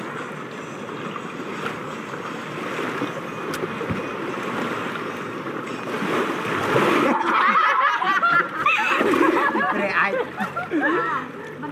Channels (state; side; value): identical; both; correlation 1.00